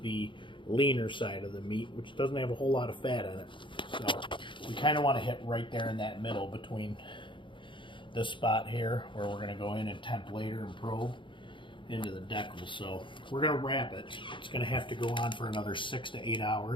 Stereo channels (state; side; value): late; right; 0.24 ms